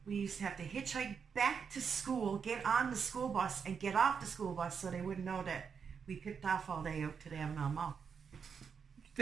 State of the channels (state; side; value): quieter; left; 6.4 dB